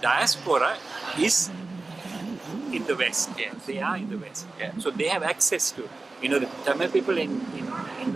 is in the West. Yes. They are in the West. Yeah. So they have access to, the Tamil people in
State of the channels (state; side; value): quieter; left; 3.5 dB